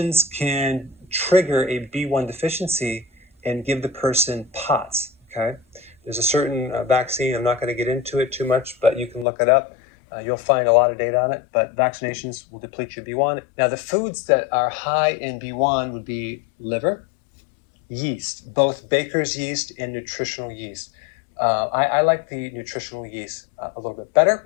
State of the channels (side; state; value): right; drops out; at 9.2 s